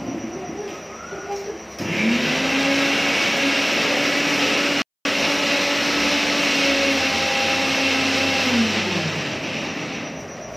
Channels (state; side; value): identical; both; correlation 1.00